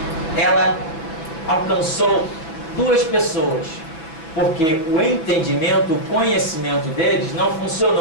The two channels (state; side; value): late; right; 6.1 ms